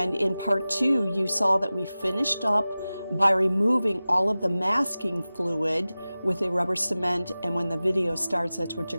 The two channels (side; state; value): both; inverted; correlation -0.97